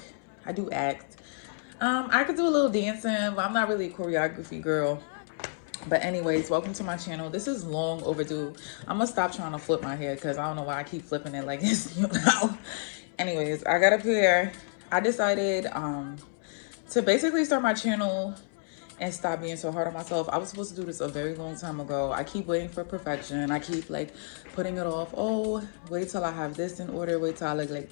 I do act. I could do a little dancing, but I'm not really a choreography girl. But anyways, welcome to my channel. This is long overdue. I'm gonna stop trying to flip my hair because I don't know why I keep flipping it like this, you know. Anyways, I got up here. I decided to basically start my channel and stop being so hard on myself. I was supposed to do this a very long time ago. I keep waiting for perfection. I keep like putting it off. Oh, wait till I have this in order. Wait till I look like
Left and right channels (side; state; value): right; silent; 58 dB below the other